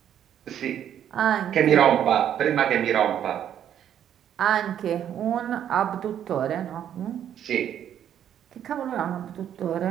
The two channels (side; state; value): left; quieter; 9.9 dB